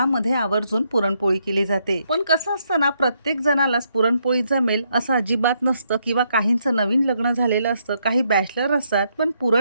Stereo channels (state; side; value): inverted; both; correlation -0.76